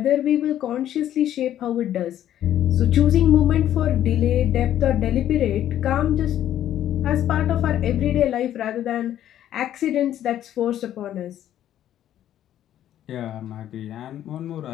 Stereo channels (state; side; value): quieter; right; 11.6 dB